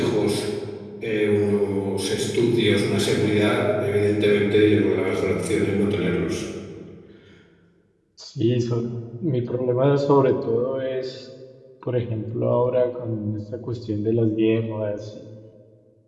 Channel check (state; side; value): identical; both; correlation 1.00